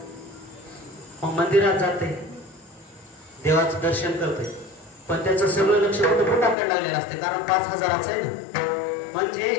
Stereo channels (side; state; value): right; drops out; at 6.6 s